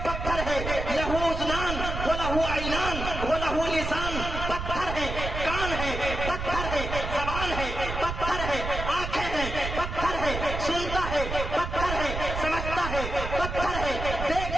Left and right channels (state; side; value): noise; right; rumble, 5 dB below the sound